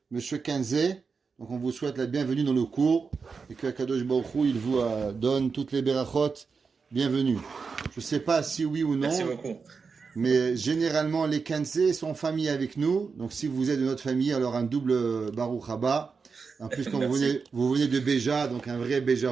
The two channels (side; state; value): left; quieter; 5.1 dB